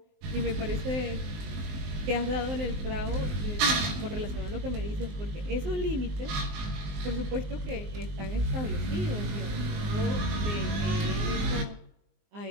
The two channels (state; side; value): late; left; 19 ms